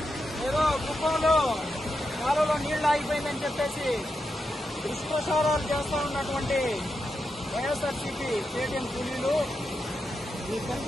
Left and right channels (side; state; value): both; normal; correlation 0.87